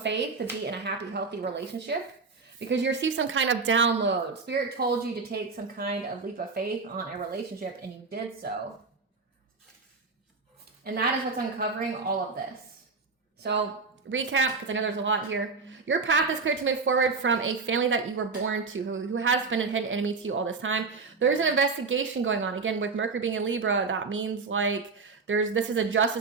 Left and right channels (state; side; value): quieter; left; 4.4 dB